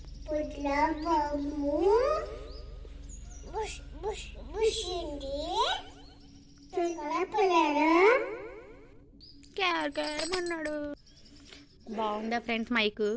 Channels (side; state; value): both; identical; correlation 1.00